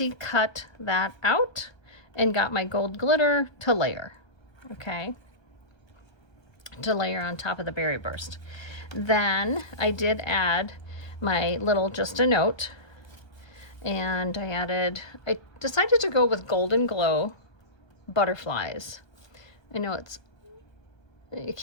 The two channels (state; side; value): late; right; 1.2 ms